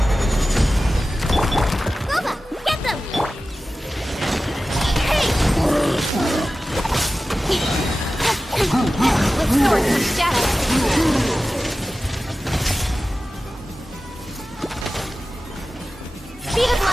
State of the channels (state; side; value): normal; both; correlation 0.94